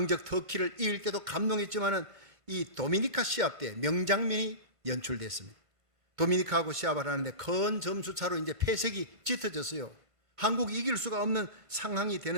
터키를 이길 때도 감동했지만은 이 도미니카 시합 때 명장면이 연출됐습니다. 도미니카하고 시합을 하는데 큰 점수 차로 이제 패색이 짙어졌어요. 한국이 이길 수가 없는 상황이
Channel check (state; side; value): late; left; 1.5 ms